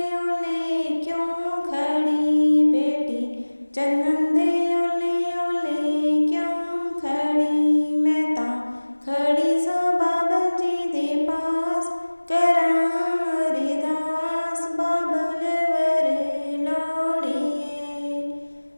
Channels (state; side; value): inverted; both; correlation -1.00